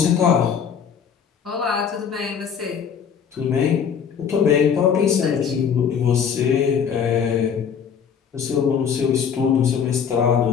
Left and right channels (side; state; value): right; quieter; 7.4 dB